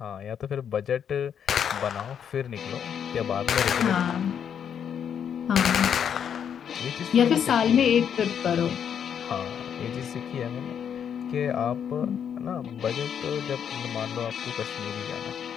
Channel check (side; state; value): right; quieter; 8.2 dB